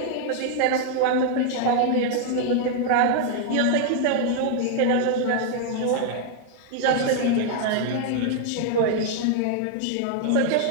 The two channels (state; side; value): different; both; correlation 0.00